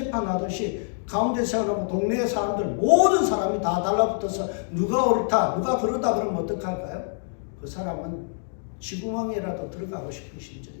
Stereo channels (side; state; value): right; silent; digital silence